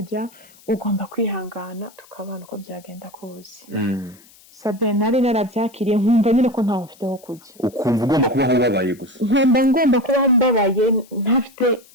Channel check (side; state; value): left; noise; hiss, 26 dB below the sound